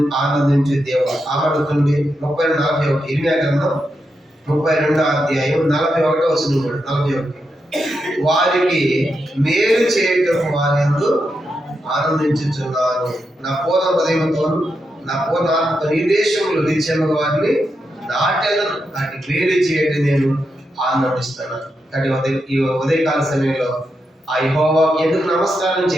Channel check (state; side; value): normal; both; correlation 0.85